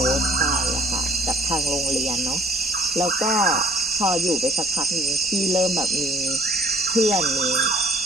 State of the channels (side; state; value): both; normal; correlation 0.56